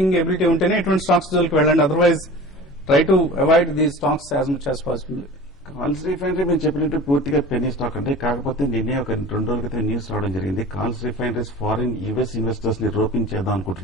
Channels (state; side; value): normal; both; correlation 0.38